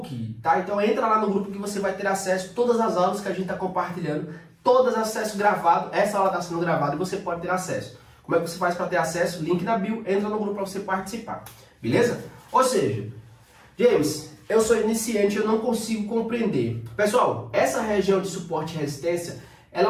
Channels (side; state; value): both; identical; correlation 1.00